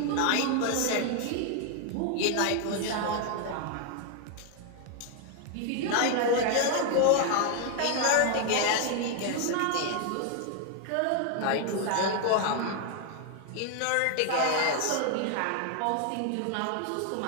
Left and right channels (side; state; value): both; different; correlation 0.00